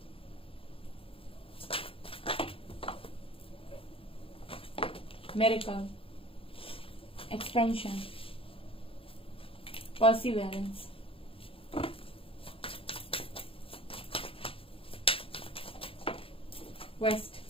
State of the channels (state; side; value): late; right; 0.27 ms